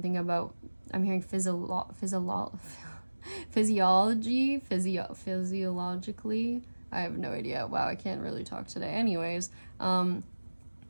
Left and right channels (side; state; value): both; inverted; correlation -1.00